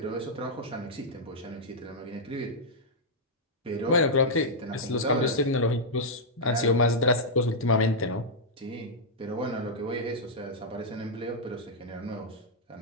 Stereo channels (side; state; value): both; normal; correlation -0.06